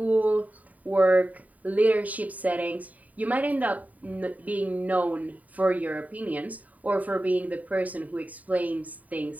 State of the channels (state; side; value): late; left; 0.073 ms